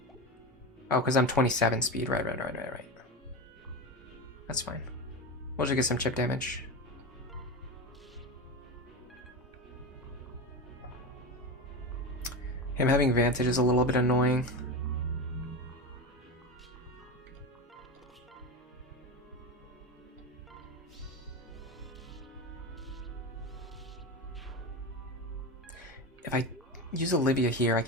Oh, because I'm 27 speed. Right. That's fine. We'll just get some chip damage. Him having Vantage is a little bit annoying. If I use Olivia here, I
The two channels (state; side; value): normal; both; correlation 0.21